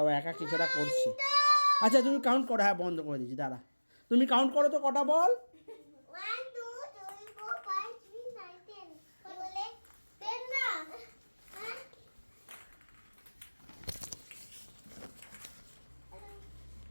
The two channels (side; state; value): both; inverted; correlation -1.00